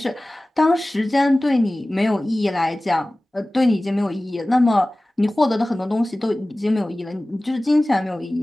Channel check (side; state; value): both; normal; correlation 0.98